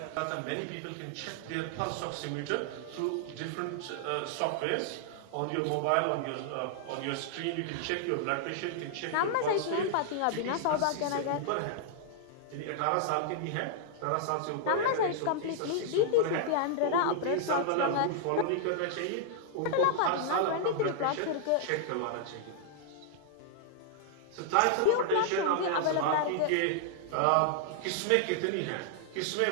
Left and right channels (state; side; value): different; both; correlation -0.01